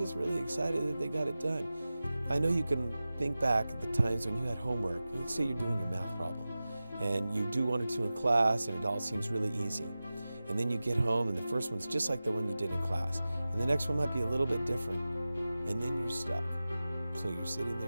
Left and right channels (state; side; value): inverted; both; correlation -0.96